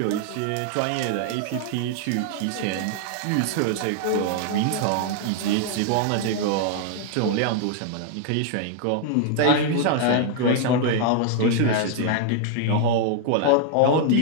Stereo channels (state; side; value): different; both; correlation 0.00